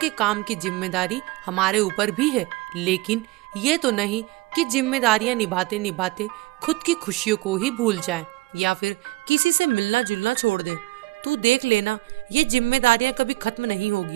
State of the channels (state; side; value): quieter; left; 20.9 dB